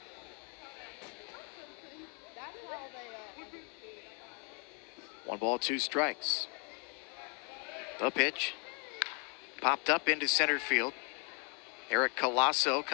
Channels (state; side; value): quieter; right; 37.6 dB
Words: One ball, two strikes. The pitch. Popped up into center field. Eric Colasso